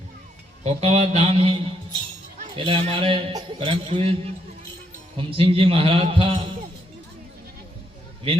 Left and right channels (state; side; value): normal; both; correlation 0.75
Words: कोकावा धाम है। पहले हमारे परम पूज्य हुम सिंह जी महाराज था